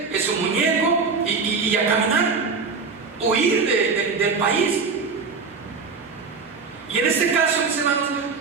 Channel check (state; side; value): quieter; left; 4.8 dB